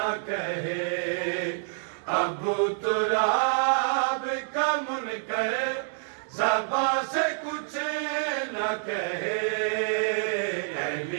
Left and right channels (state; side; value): silent; left; digital silence